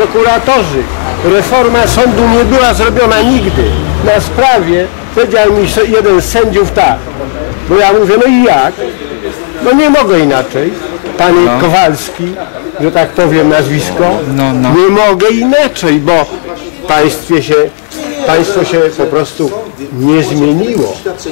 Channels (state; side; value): silent; right; digital silence